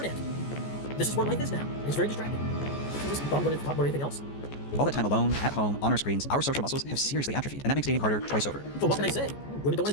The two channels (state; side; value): late; right; 14 ms